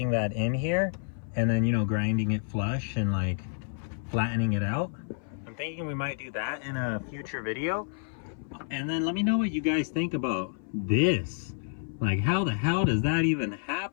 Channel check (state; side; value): silent; right; 57 dB below the other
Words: that in here, and then, you know, grinding it flush and like flattening it out. I'm thinking we might do that in a future video. And then let me know what you guys think about this. Like, how the hell does that even